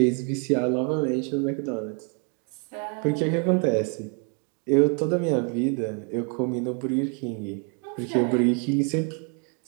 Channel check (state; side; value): quieter; left; 38.1 dB